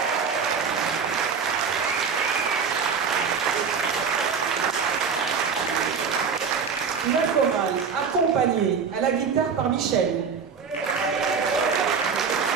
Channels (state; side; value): quieter; left; 5.9 dB